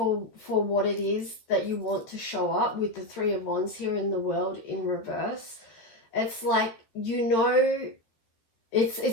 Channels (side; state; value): right; late; 14 ms